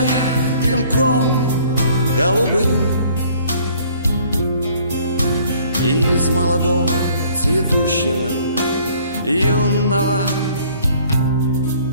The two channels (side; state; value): both; inverted; correlation -0.58